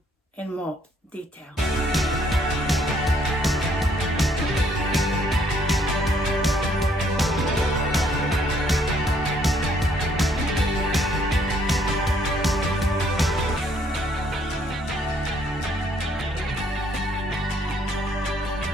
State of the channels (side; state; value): both; normal; correlation 0.67